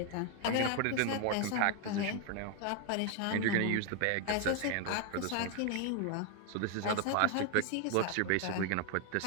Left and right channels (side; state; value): both; different; correlation 0.00